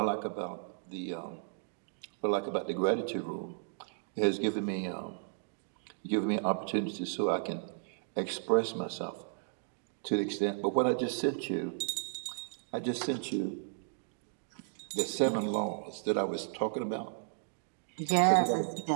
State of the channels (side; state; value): left; silent; digital silence